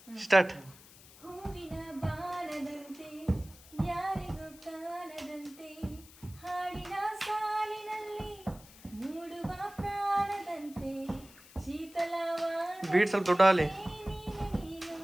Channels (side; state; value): left; noise; hiss, 21 dB below the sound